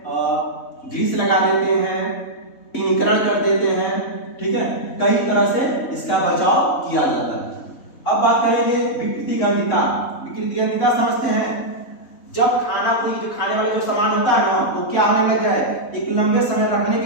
ग्रीस लगा देते हैं, टिनिकरण कर देते हैं, ठीक है, कई तरह से इसका बचाव किया जाता है। अब बात करेंगे विकृति गंधिता। विकृति गंधिता समझते हैं, जब खाना कोई जो खाने वाला जो सामान होता है ना वो क्या होने लग जाए, एक लंबे समय रखने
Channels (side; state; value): right; late; 3.6 ms